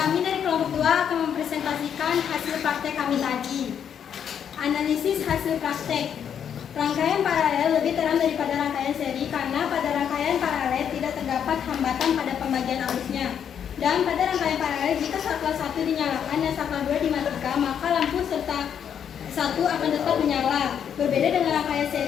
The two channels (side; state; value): right; quieter; 8.4 dB